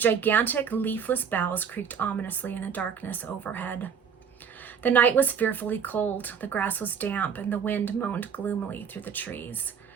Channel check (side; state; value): left; quieter; 7.0 dB